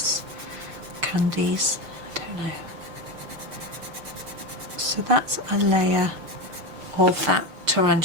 candies. No. So that's a layer of that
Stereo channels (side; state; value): left; late; 6.6 ms